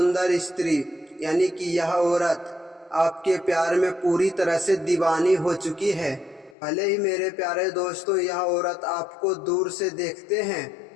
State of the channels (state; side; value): drops out; right; at 6.6 s